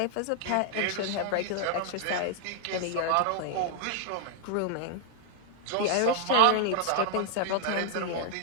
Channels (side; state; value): both; different; correlation 0.00